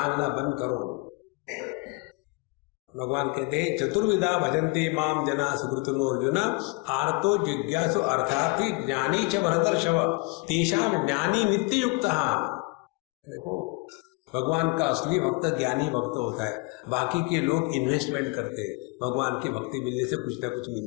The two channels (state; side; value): quieter; right; 27.8 dB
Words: बंद करो। भगवान कहते हैं चतुर्विधा भजन्ते माम जना सुकृतनो अर्जुन आर्तो जिज्ञासु अर्थार्थी ज्ञानी च भरतर्षभ तेषां ज्ञानी नित्य युक्तः। देखो भगवान का असली भक्त ज्ञानी भक्त होता है, बाकी के लोग इन्वेस्टमेंट करते हैं, भगवान की भक्ति मिलने से कुछ ना कुछ